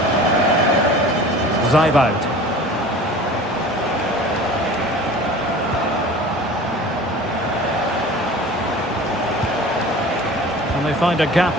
Zeibold. And they find a gap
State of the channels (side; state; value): both; normal; correlation 0.42